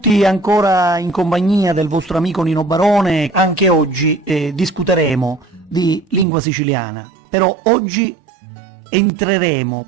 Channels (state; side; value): drops out; left; at 6.2 s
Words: ancora in compagnia del vostro amico Nino Barone. Anche oggi discuteremo di lingua siciliana, però oggi entreremo